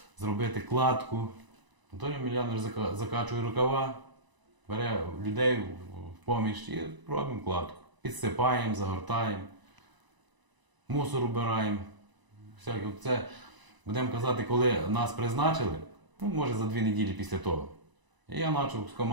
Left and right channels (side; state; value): left; late; 1.0 ms